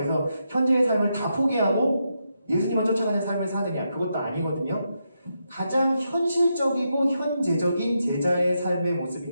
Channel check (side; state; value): both; inverted; correlation -0.83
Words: 현재의 삶을 다 포기하고 예수님을 쫓아가는 삶을 사느냐? 그것도 아니거든요. 가장 현실적이고 현재적인 제자의 삶의 모습이